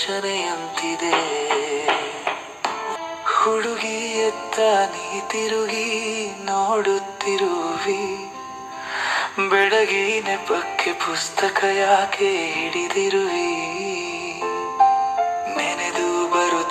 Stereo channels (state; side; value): identical; both; correlation 1.00